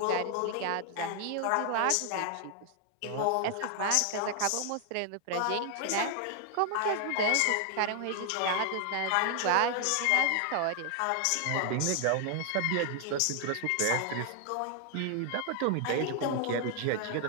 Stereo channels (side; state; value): both; different; correlation 0.00